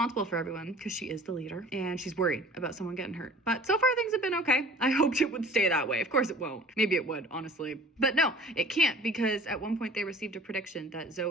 for everyone because she is the leader, and she's worried about someone getting hurt. But so far things have been okay. I hoped it would stay that way. Of course it won't. Maybe it would, honestly. But no, it can't, because at one point they received a prediction that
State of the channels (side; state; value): both; normal; correlation 0.46